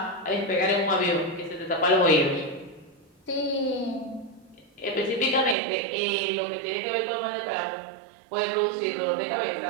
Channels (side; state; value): left; drops out; at 5.6 s